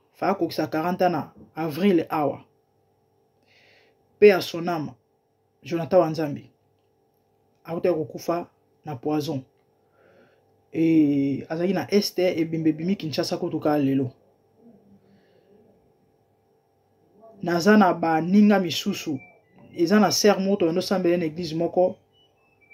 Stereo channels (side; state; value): both; identical; correlation 1.00